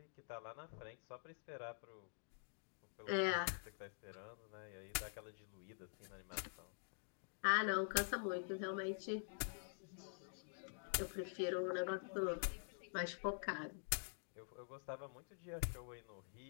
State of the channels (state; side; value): silent; right; digital silence